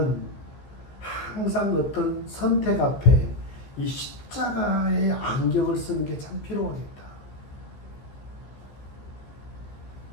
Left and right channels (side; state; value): right; late; 15 ms